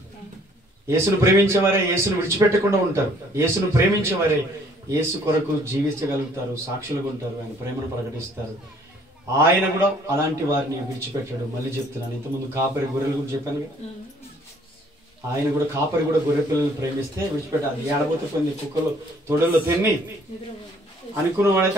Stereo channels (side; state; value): both; normal; correlation 0.60